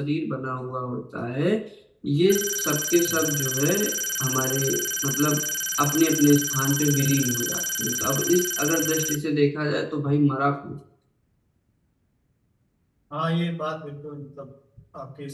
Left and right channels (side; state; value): both; identical; correlation 1.00